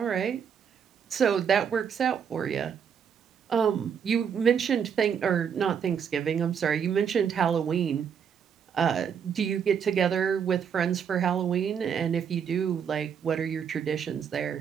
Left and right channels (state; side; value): quieter; left; 7.5 dB